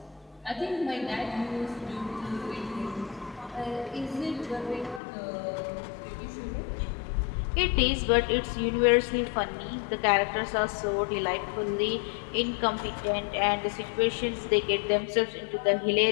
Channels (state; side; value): drops out; right; at 5.0 s